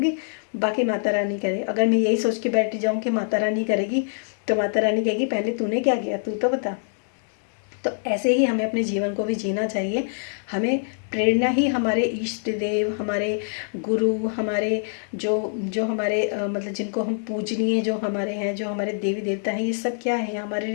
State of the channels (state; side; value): silent; right; digital silence